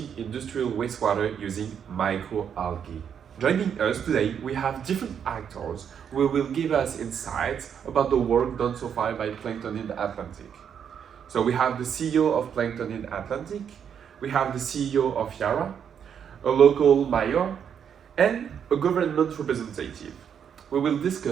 industrial wastewater using microalgae. Joining us today, we have different actors who will give us insights about the work done so far by Planktonid Atlantic. So we have the CEO of Planktonid Atlantic, we have the CEO of Yara, a local mayor, and a government representative. We will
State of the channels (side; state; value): left; quieter; 8.0 dB